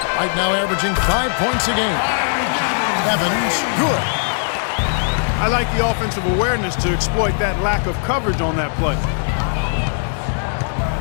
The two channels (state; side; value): silent; right; digital silence